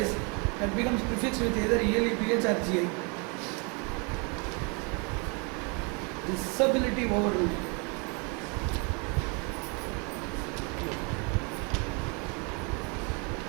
that becomes prefixed with either ELEPH or GI. Disability overruled.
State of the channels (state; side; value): quieter; left; 33.1 dB